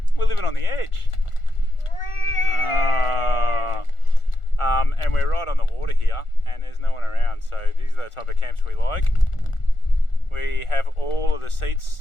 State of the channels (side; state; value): right; late; 1.4 ms